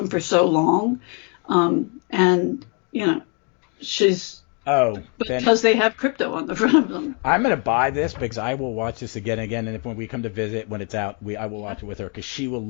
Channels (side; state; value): right; quieter; 36.7 dB